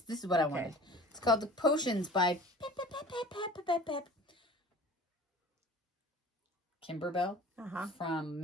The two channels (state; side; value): normal; both; correlation 0.43